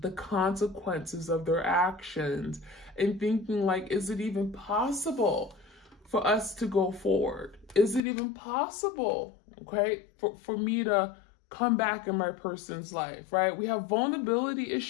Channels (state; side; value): drops out; right; at 8.0 s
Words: consequences of their actions, and thinking like, is it even possible for us to go forward? Is it even possible, okay, for me to come back in my person's life, right? We have vulnerability